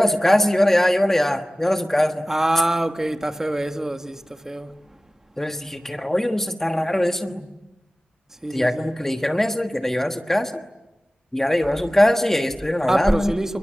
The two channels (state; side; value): normal; both; correlation 0.97